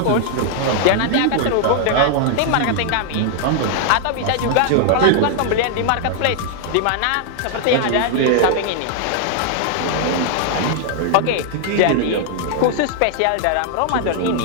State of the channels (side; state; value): both; different; correlation 0.00